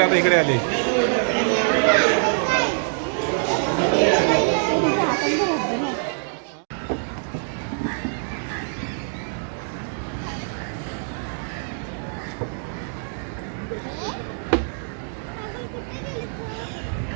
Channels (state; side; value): silent; left; 57 dB below the other